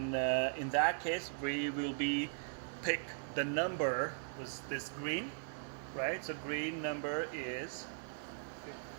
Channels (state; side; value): silent; left; digital silence